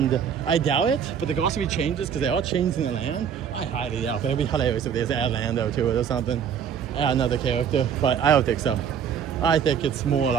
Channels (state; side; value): quieter; left; 7.9 dB